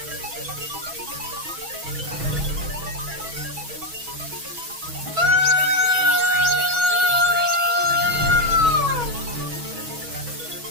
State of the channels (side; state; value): left; late; 6.2 ms